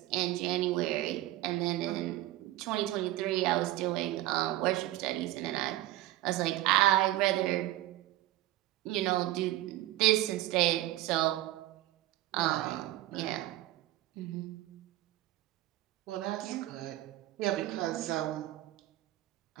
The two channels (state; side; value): quieter; left; 16.0 dB